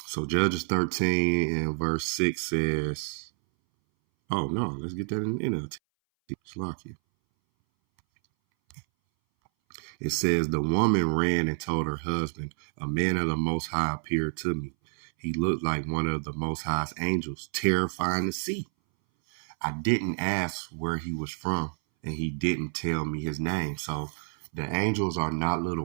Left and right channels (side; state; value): left; silent; 59 dB below the other